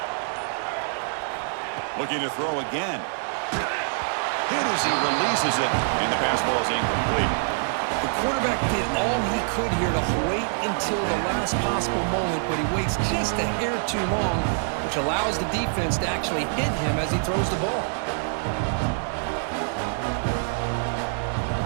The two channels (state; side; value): silent; left; 61 dB below the other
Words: Looking to throw again. Hit as he releases it, and the pass ball is incomplete. The quarterback did all he could here to wait until the last possible moment, but he waits just a hair too long, which allows the defense to actually hit him as he throws the ball.